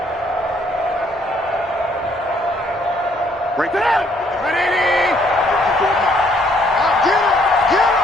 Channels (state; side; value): normal; both; correlation 0.66